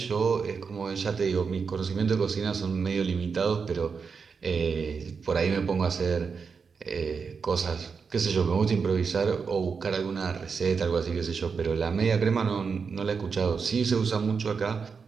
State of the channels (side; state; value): left; quieter; 5.5 dB